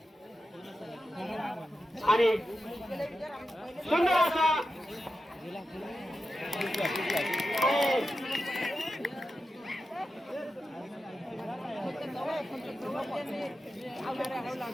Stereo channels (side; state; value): both; normal; correlation 0.90